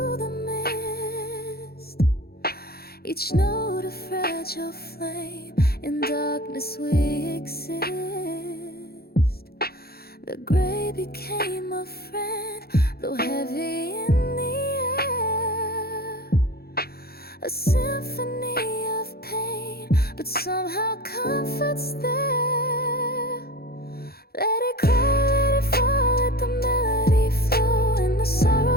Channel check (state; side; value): late; right; 0.45 ms